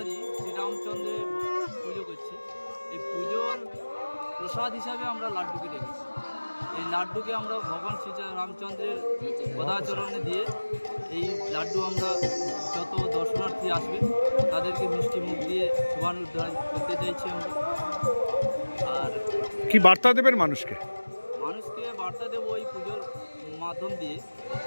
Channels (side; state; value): both; inverted; correlation -1.00